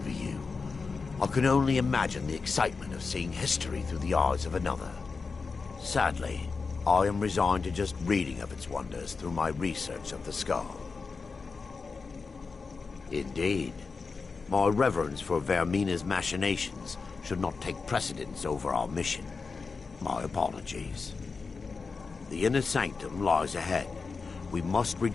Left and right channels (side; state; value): right; quieter; 4.6 dB